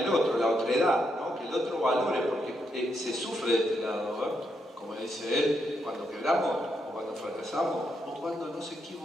otro, la otredad, ¿no? Que el otro valore, porque se sufre de este lado, ¿no? Como dice él, cuando quebramos, o cuando fracasamos, o cuando nos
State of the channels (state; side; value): normal; both; correlation 0.80